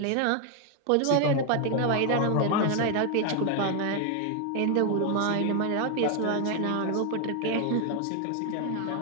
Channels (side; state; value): both; different; correlation 0.01